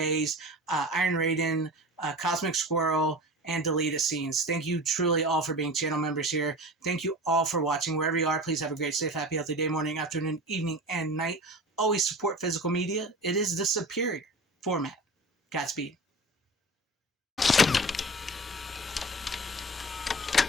Iron Raiden, Cosmic Squirrel, and deleted scenes. Thank you truly all for being channel members here. Thank you all for watching. Wherever you are, please have a great, safe, happy, healthy day, morning, afternoon, evening, and night. Always support physical media. It is the superior format. Godspeed.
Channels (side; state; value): both; normal; correlation 0.35